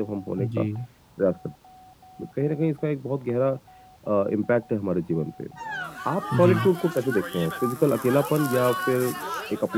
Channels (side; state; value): both; identical; correlation 1.00